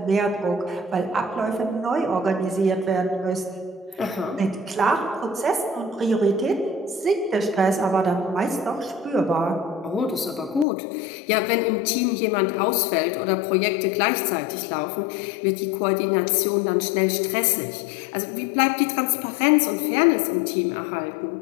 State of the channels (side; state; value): right; drops out; at 10.7 s